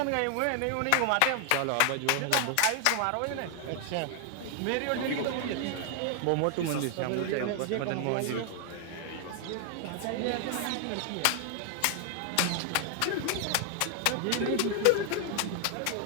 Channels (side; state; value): both; different; correlation 0.00